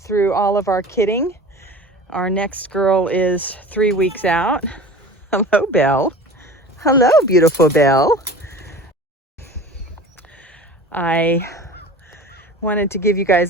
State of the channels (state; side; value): normal; both; correlation 0.38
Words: all of our kidding. Our next girl is 3 weeks out. Hello, Belle. Hello, beautiful Belle. I wanted to give you guys